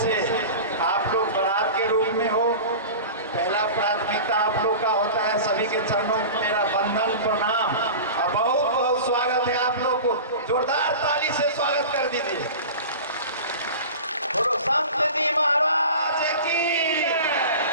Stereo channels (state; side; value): inverted; both; correlation -0.34